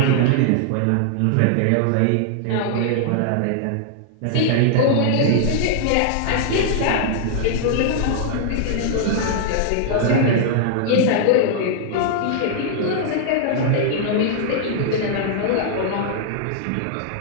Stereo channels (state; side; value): different; both; correlation -0.01